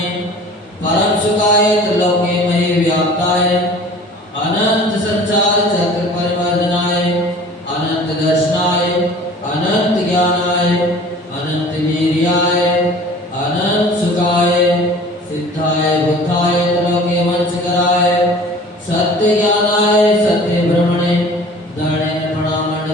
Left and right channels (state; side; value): normal; both; correlation 0.45